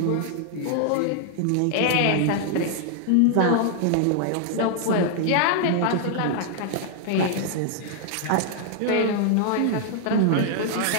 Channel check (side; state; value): both; different; correlation 0.00